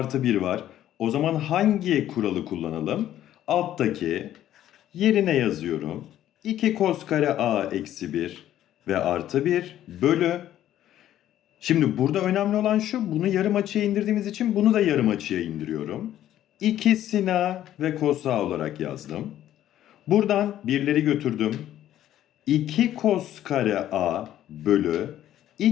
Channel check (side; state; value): right; quieter; 12.2 dB